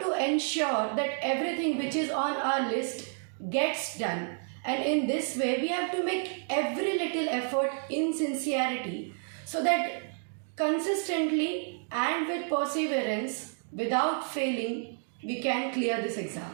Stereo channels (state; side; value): silent; left; 58 dB below the other